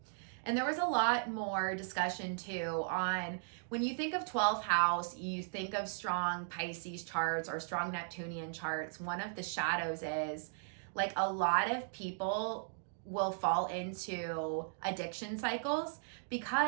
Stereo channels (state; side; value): silent; left; digital silence